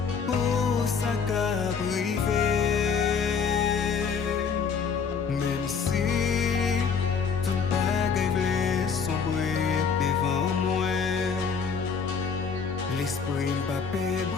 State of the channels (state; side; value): quieter; right; 6.1 dB